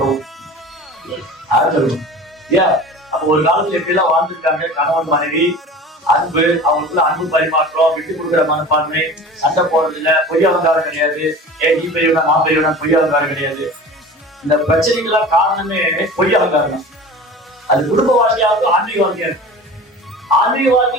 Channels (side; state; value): both; normal; correlation 0.37